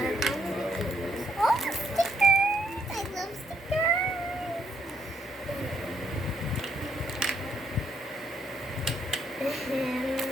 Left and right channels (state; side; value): normal; both; correlation 0.72